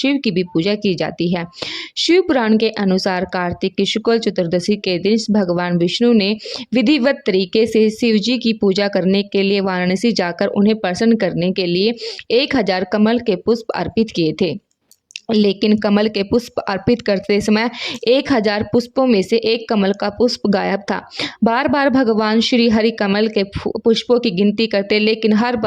की भी पूजा की जाती है। शिव पुराण के अनुसार कार्तिक की शुक्ल चतुर्दशी के दिन भगवान विष्णु ने विधिवत तरीके से शिव जी की पूजा करने के लिए वाराणसी जाकर उन्हें प्रसन्न करने के लिए 1000 कमल के पुष्प अर्पित किए थे। लेकिन कमल के पुष्प अर्पित करते समय 1000 पुष्पों में से एक कमल का पुष्प गायब था। बार बार भगवान श्री हरि कमल के पुष्पों की गिनती करते, लेकिन हर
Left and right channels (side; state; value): both; identical; correlation 1.00